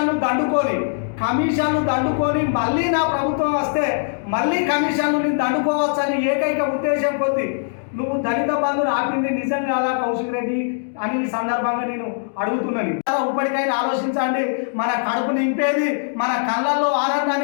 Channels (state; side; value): silent; right; digital silence